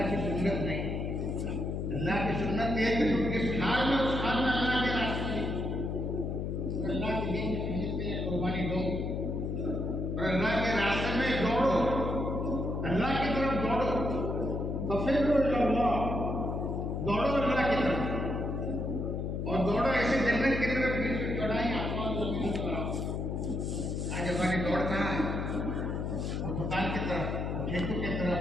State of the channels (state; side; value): noise; left; hum, 2 dB below the sound